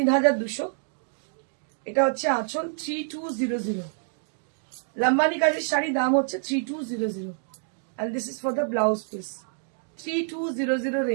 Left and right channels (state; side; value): silent; left; digital silence